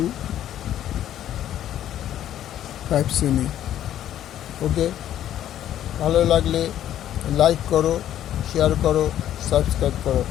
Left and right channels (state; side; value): quieter; right; 11.5 dB